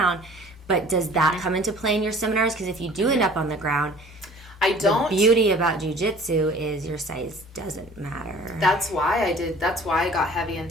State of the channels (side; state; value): both; normal; correlation 0.49